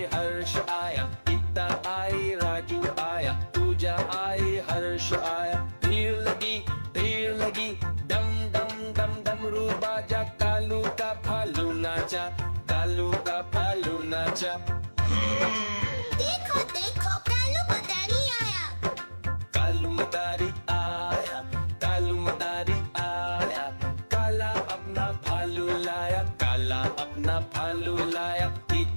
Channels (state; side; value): inverted; both; correlation -1.00